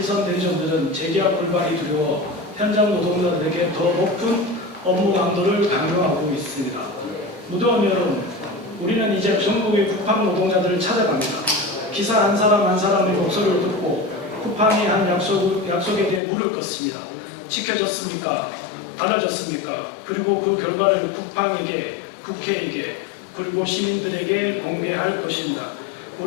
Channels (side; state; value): right; drops out; at 16.2 s